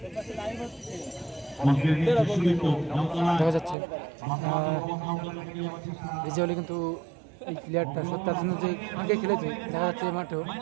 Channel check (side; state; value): left; drops out; at 3.8 s